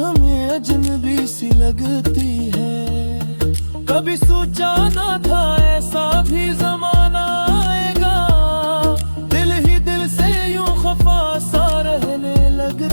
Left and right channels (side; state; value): both; inverted; correlation -1.00